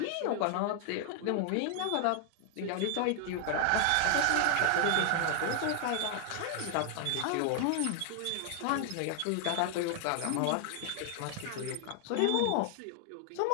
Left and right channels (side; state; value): both; different; correlation 0.00